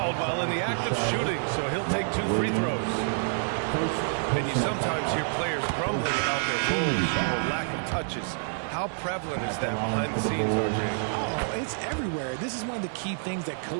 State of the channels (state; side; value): silent; left; digital silence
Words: while in the act of shooting, so he'll take 2 free throws. And you sometimes hear players grumbling about their roles or lack of touches. How prevalent is that behind the scenes, RJ? Oh, it's everywhere. This is one of the key things that